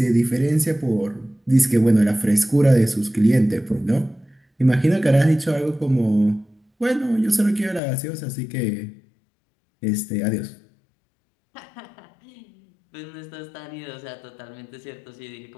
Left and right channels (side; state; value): right; drops out; at 7.8 s